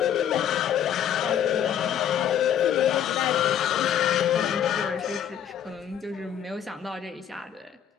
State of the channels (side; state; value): right; quieter; 9.5 dB